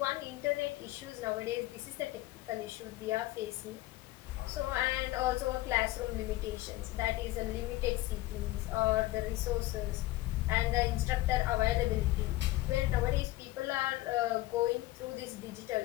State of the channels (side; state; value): right; quieter; 17.6 dB